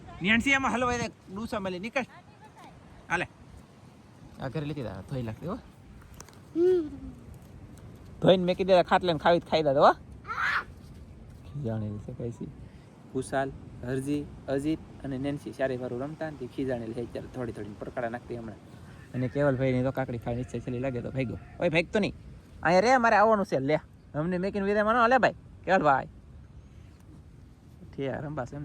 નેન્સી એમાં હલવાઈ દે ડૂસા મળી નીકળ હાલે આ ઘરે લીધી દા ધોઈ લાગતી હો ધોઈને મેકી દે ખાટલે ને ખાઈ દે હો ખીજાણેલી છે કઈસી કુશાલ હરજી અજીત અને નેન્સી ચારે વારું રમતા ને ખીજાણેલી છે ત્યારે થોડી થોડી પરકાડા નાખતી હમણાં અને કેવલભાઈ ની તો કાકડી ખાવાની ઈચ્છા છેલ્લી લાગે તો ભાગ્યો ઓય ભાગતો નહીં અહીંયા રે મારે આવવાનું છે લે અમને મેકીને વિદાય માનો લે ભાઈ કેવલભાઈ ઠીક રંબા છે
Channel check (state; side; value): identical; both; correlation 1.00